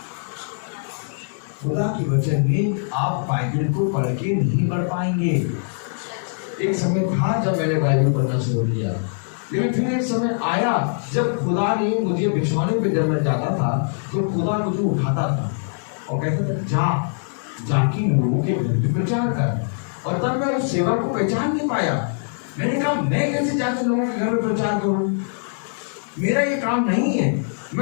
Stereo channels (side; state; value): right; silent; digital silence